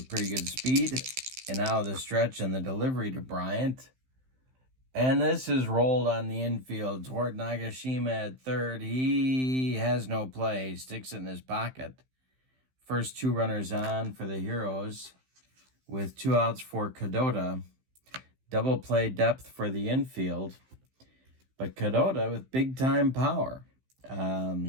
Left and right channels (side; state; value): left; late; 15 ms